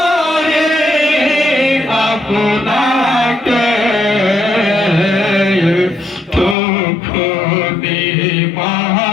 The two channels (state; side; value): drops out; right; at 6.6 s